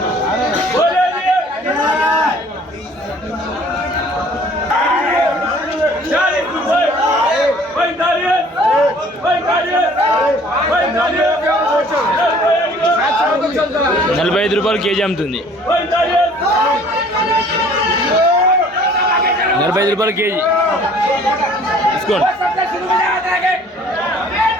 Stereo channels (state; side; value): normal; both; correlation 0.54